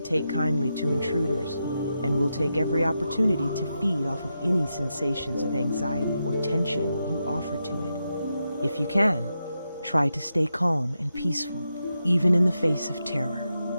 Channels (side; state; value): both; inverted; correlation -0.87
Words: take kindly to intruders and will take every opportunity to feed off of any sensations of anxiety or tension you offer to it. If you can, try to stay calm and peaceful, even in the face of terror.